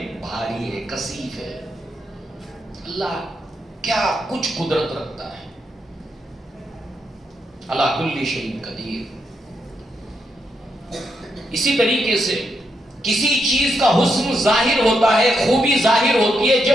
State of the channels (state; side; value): normal; both; correlation 0.81